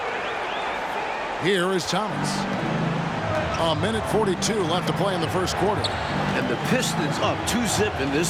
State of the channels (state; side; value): identical; both; correlation 1.00